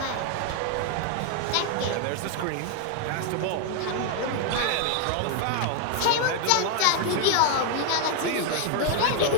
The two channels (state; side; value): different; both; correlation 0.00